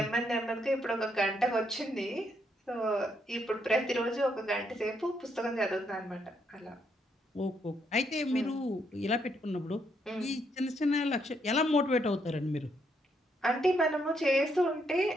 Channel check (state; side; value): normal; both; correlation 0.75